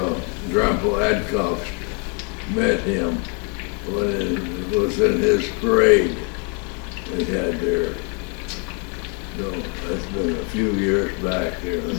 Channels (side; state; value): right; quieter; 36.9 dB